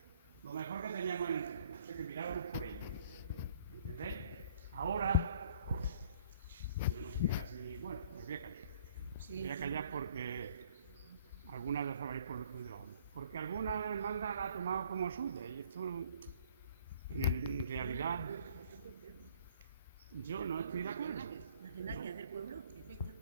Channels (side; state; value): both; inverted; correlation -0.57